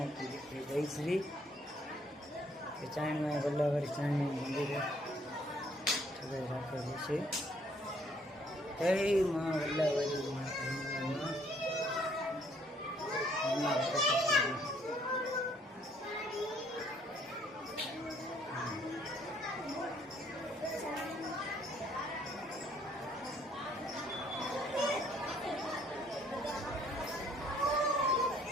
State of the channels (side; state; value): both; normal; correlation 0.64